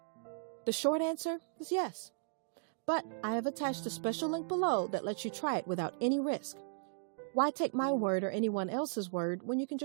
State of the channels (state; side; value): silent; left; digital silence